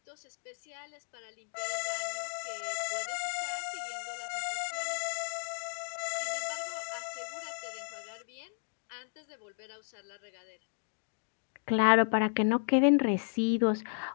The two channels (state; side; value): silent; right; digital silence